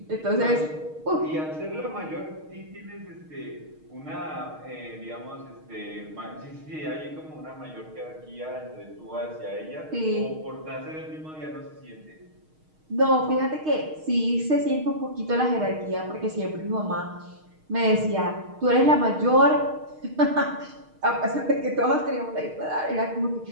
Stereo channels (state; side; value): late; left; 6.5 ms